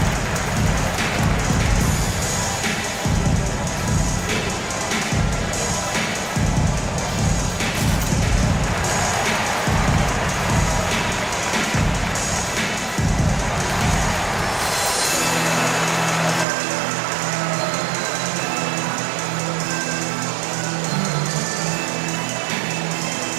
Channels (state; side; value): drops out; left; at 16.4 s